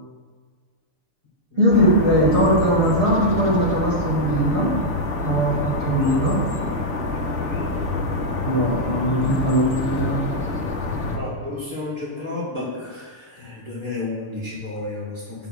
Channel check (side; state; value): left; late; 6.8 ms